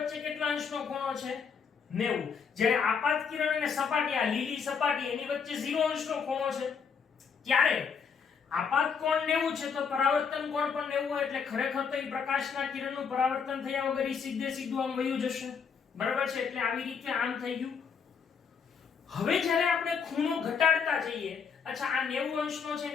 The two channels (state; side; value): quieter; right; 6.2 dB